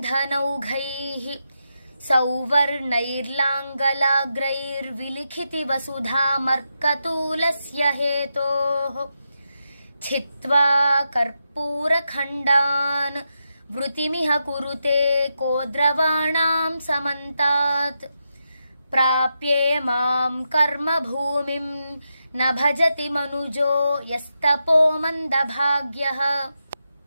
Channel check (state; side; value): inverted; both; correlation -0.86